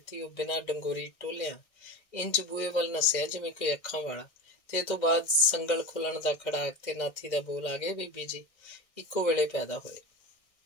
ਉਹ ਬਿਨਾਂ ਡੰਗੋਰੀ ਟੋਲਿਆਂ ਇੰਜ ਬੂਹੇ ਵੱਲ ਨੱਸਿਆ ਜਿਵੇਂ ਕੋਈ ਅੱਖਾਂ ਵਾਲਾ। ਤੇ ਇਹ ਤੋਂ ਬਾਅਦ ਸੰਗਲ ਖੁੱਲਣ ਦਾ ਖੜਾਕ ਤੇ ਨਾਥੀ ਦਾ ਬੋਲ ਆ ਗਏ, ਬੀਬੀ ਜੀ ਇੱਕੋ ਵੇਲੇ ਪੈਦਾ ਹੋਏ।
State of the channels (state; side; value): late; right; 1.6 ms